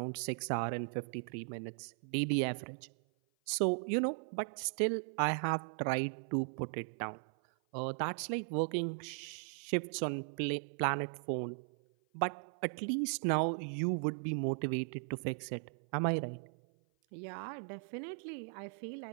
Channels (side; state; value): left; silent; 53 dB below the other